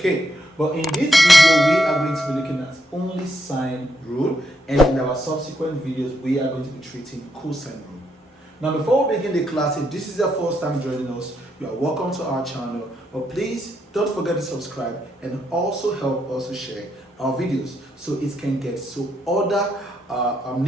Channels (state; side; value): normal; both; correlation 0.78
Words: but in this video we are going to be looking at only sine rule, and in our subsequent videos we are going to be treating cosine rule. Now, before we begin the class, if this is your first time joining us, you are welcome to our channel. But please don't forget to subscribe and also help us to share our videos so it can get to other